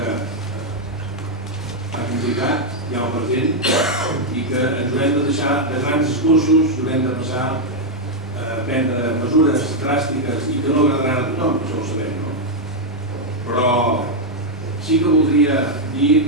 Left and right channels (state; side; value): normal; both; correlation -0.01